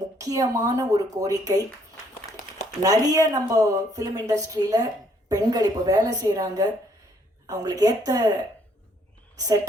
முக்கியமான ஒரு கோரிக்கை. நிறைய நம்ம ஃபிலிம் இண்டஸ்ட்ரியில் பெண்கள் இப்போ வேலை செய்கிறாங்க, அவங்களுக்கு ஏற்ற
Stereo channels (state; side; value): normal; both; correlation 0.67